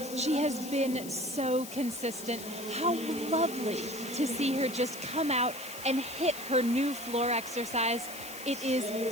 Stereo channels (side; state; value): left; noise; hiss, 12 dB below the sound